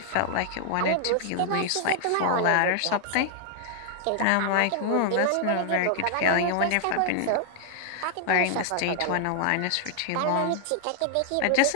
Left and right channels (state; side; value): different; both; correlation 0.00